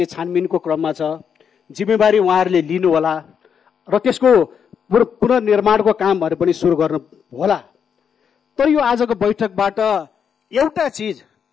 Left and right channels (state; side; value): quieter; right; 7.3 dB